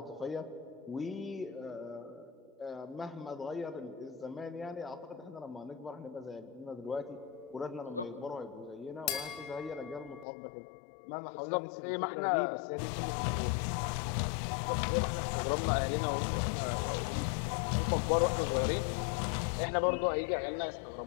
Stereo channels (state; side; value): drops out; right; at 10.2 s